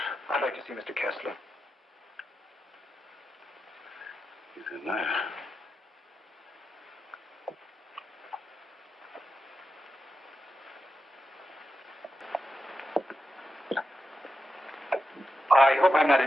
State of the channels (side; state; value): both; normal; correlation 0.88